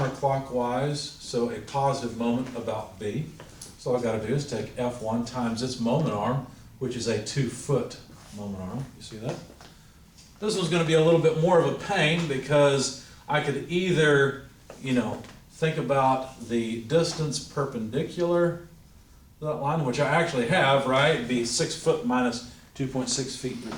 so a positive moment about B. So all I gotta do is take F1 times its moment arm, which is a 2-foot moment arm. You see that? This one's gonna be a little bit more of a pain because I could either, think about the distance perpendicular to that line, which I actually have, right? It'd be 6 foot minus 2.6 feet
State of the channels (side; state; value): both; identical; correlation 1.00